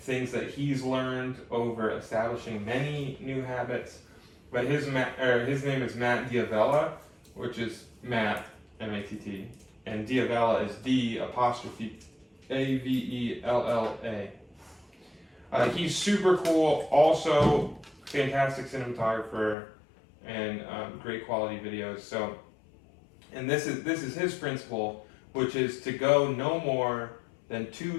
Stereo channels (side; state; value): right; drops out; at 19.6 s